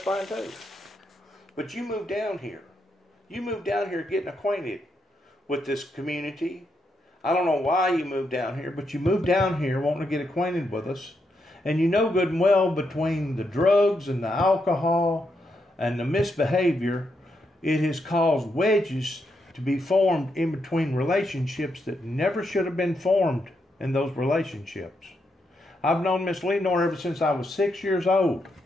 too. But you moved down here. You moved down here getting acquainted with this community. I don't know why you moved down here, but you moved down here wanting to get acquainted with us. And you know good and well between the drugs and the alcohol and the misbehavior, it has caused wedges to be formed in between relationships that never should have been formed in those relationships. I've known Miss Lenore ever since I was 6 years old.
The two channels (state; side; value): normal; both; correlation 0.81